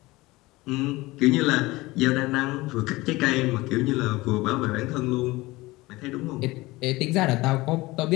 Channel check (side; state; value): right; quieter; 20.5 dB